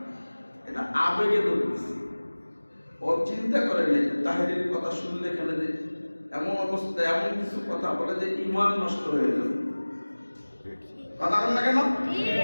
এটা আবেগে ধরতেছে। ও চিন্তা করে নেই তাহিরির কথা শুনলে এখানে যে এমন অবস্থা, এমন কিছু কথা বলে যে ঈমান নষ্ট হয়ে যাবে। কথা বলেন না কেন?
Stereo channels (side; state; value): both; inverted; correlation -1.00